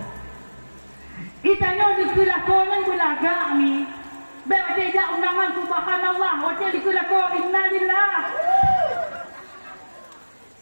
Itanyo di gelako nang bulaga ni. Be wate ja undangan subhanallah, wate di gelako innalillah.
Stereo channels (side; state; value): both; inverted; correlation -1.00